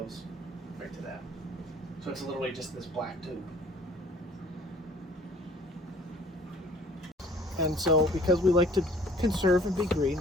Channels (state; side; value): normal; both; correlation 0.53